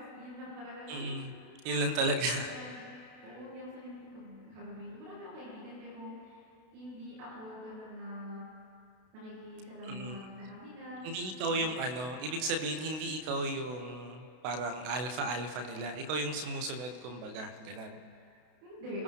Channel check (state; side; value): late; left; 32 ms